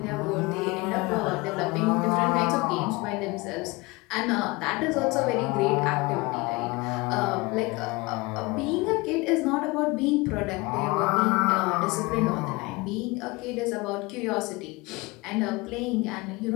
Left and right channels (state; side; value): quieter; right; 24.2 dB